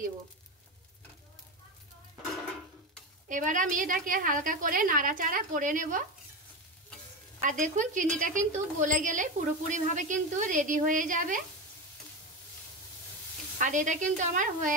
দেব। এবার আমি এটাকে হালকা করে নাড়াচাড়া করে নেব। আর দেখুন চিনিটা কিন্তু গলে গেলে পুরোপুরিভাবে কিন্তু রেডি হয়ে যাবে। আর এটা কিন্তু আমার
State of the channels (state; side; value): normal; both; correlation 0.19